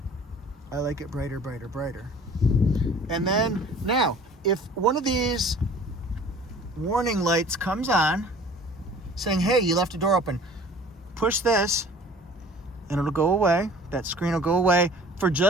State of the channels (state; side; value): normal; both; correlation 0.48